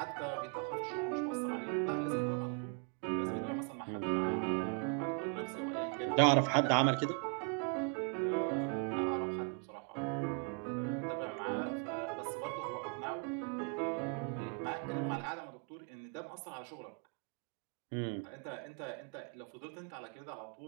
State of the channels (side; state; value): left; quieter; 37.1 dB